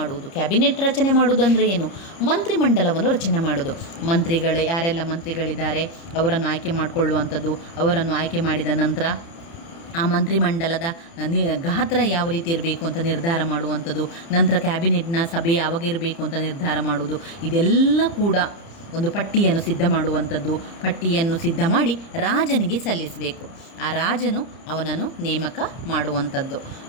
ಕ್ಯಾಬಿನೆಟ್ ರಚನೆ ಮಾಡುವುದಂದರೆ ಏನು? ಮಂತ್ರಿಮಂಡಲವನ್ನು ರಚನೆ ಮಾಡೋದು. ಮಂತ್ರಿಗಳು ಯಾರೆಲ್ಲ ಮಂತ್ರಿಗಳಿದ್ದಾರೆ ಅವರನ್ನು ಆಯ್ಕೆ ಮಾಡಿಕೊಳ್ಳುವಂಥದ್ದು, ಅವರನ್ನು ಆಯ್ಕೆ ಮಾಡಿದ ನಂತರ ಆ ಮಂತ್ರಿಮಂಡಲದ ಗಾತ್ರ ಯಾವ ರೀತಿ ಇರಬೇಕು ಅಂತ ನಿರ್ಧಾರ ಮಾಡುವಂಥದ್ದು, ನಂತರ ಕ್ಯಾಬಿನೆಟ್ನ ಸಭೆ ಯಾವಾಗ ಇರಬೇಕು ಅಂತ ನಿರ್ಧಾರ ಮಾಡುವುದು. ಇದೆಲ್ಲ ಕೂಡ ಒಂದು ಪಟ್ಟಿಯನ್ನು ಸಿದ್ಧ ಮಾಡುವಂಥದ್ದು. ಪಟ್ಟಿಯನ್ನು ಸಿದ್ಧ ಮಾಡಿ ರಾಜನಿಗೆ ಸಲ್ಲಿಸಬೇಕು. ಆ ರಾಜನು ಅವನನ್ನು ನೇಮಕ ಮಾಡುವಂಥದ್ದು.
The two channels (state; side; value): late; right; 30 ms